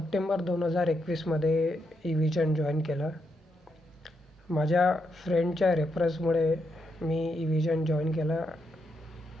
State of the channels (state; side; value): normal; both; correlation 0.81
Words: 2021मध्ये इव्हिजन join केलं. माझ्या फ्रेंडच्या रेफरन्समुळे मी इव्हिजन join केलं.